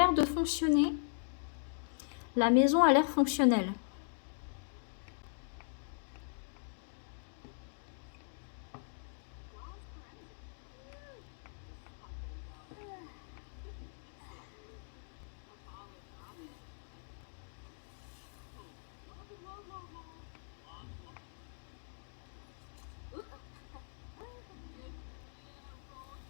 de fonctionner. La maison a l'air fonctionnelle.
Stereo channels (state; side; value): silent; right; digital silence